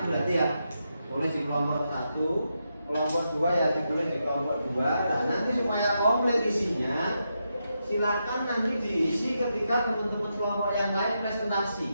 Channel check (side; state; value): both; inverted; correlation -0.84